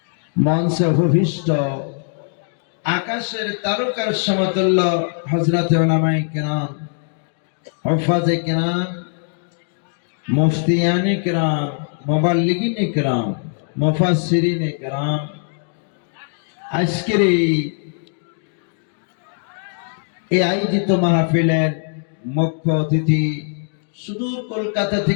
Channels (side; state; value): right; silent; 64 dB below the other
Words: মঞ্চে উপবিষ্ট আকাশের তারকার সমতুল্য হযরত উলামায়ে কিরাম, হুফাজে কিরাম, মুফতিয়ানে কিরাম, মুবাল্লিগিনে কিরাম, মুফাসসিরিনে কিরাম, আজকের এই আয়োজিত মাহফিলের মুখ্য অতিথি, সুদূর কলকাতা